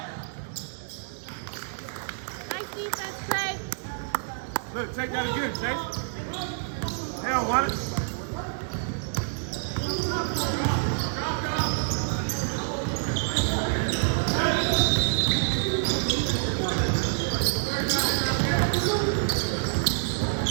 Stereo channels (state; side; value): silent; left; digital silence